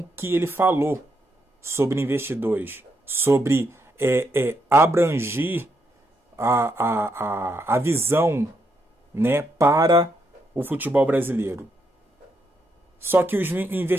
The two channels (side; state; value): both; normal; correlation 0.79